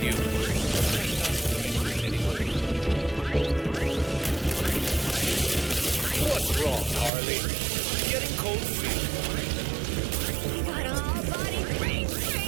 you, what's wrong, Harley? Getting cold feet. You got all body brain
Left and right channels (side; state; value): left; drops out; at 7.1 s